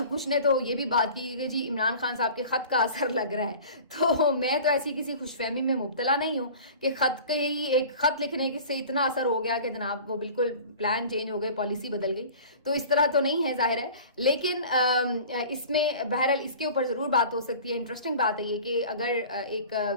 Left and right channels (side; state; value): both; inverted; correlation -0.41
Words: کچھ نے تو یہ بھی بات کی کہ جی عمران خان صاحب کے خط کا اثر لگ رہا ہے. تو میں تو ایسی کسی خوش فہمی میں مبتلا نہیں ہوں کہ خط کے ہی ایک خط لکھنے سے اتنا اثر ہو گیا کہ جناب وہ بالکل پلان چینج ہو گئے, پالیسی بدل گئی. تو اس طرح تو نہیں ہے ظاہر ہے, لیکن اس میں بہرحال اس کے اوپر ضرور بات ہو سکتی ہے. انٹرسٹنگ بات ہے یہ کہ اگر ایک